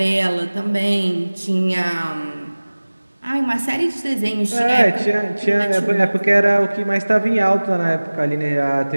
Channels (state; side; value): inverted; both; correlation -1.00